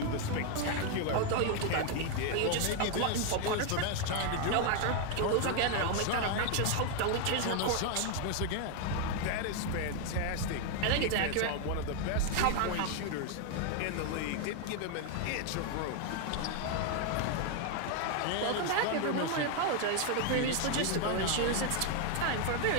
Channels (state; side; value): different; both; correlation 0.01